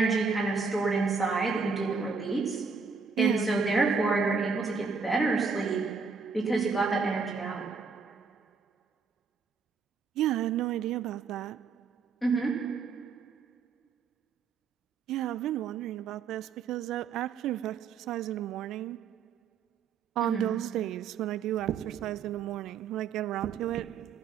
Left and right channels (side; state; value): left; quieter; 5.2 dB